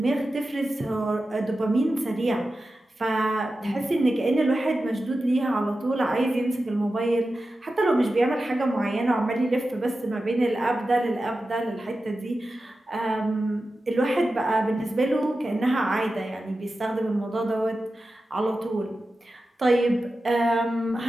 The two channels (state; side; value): normal; both; correlation 0.93